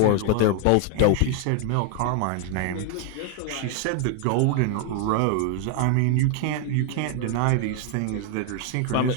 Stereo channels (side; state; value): both; different; correlation 0.00